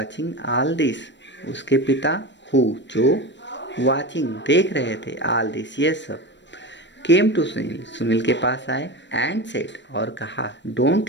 all this, उसके पिता हु जो वॉचिंग देख रहे थे, ऑल दिस ये सब। केम टू सुनील, सुनील के पास आए। एंड सेड, और कहा,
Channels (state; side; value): late; right; 0.53 ms